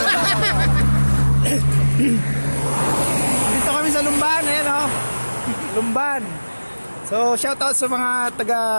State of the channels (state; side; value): inverted; both; correlation -1.00